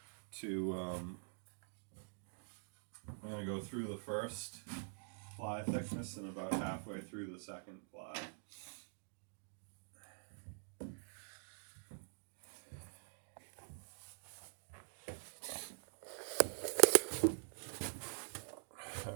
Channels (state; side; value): silent; left; digital silence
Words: to, I'm going to go through the first ply thickness and about halfway through the second ply.